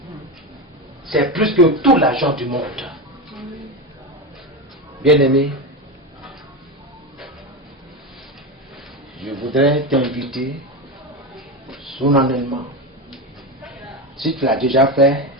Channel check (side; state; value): both; normal; correlation 0.18